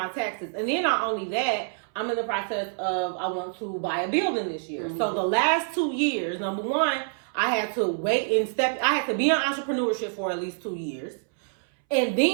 taxes. And then not only that, I'm in the process of, I want to buy a building this year. So the last 2 years, number one, I had to wait and I had to be in entrepreneurship for at least 2 years. And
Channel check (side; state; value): left; silent; 60 dB below the other